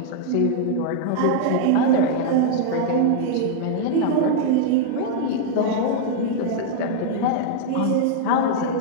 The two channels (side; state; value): both; different; correlation -0.01